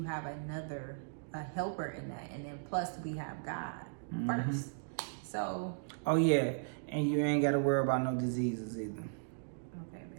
have a helper in that. And then plus we have God first. So. Oh, yeah. And you ain't got to worry about no diseases either. Okay,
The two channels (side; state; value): left; silent; digital silence